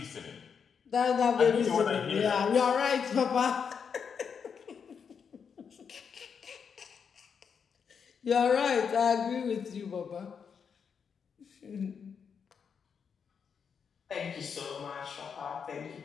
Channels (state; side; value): quieter; right; 6.6 dB